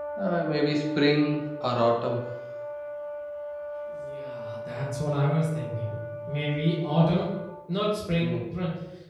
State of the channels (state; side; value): identical; both; correlation 1.00